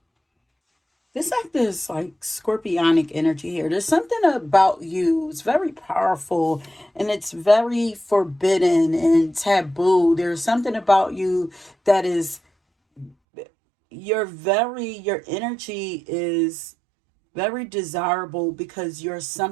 This like this like scorpionic energy here. There's something about you. It's very powerful and it's very forbidden and taboo. There's something about you that is your energy is very desirable because you're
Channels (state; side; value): drops out; left; at 13.2 s